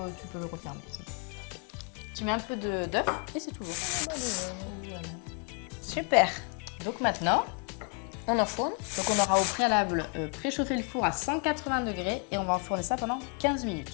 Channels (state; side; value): quieter; right; 38.1 dB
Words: peux le refermer. C'est bon. Tu mets un peu d'œuf et c'est tout bon. Voilà. Super. Donc maintenant, On enfourne. donc on aura au préalable préchauffé le four à 180 degrés et on va enfourner ça pendant 15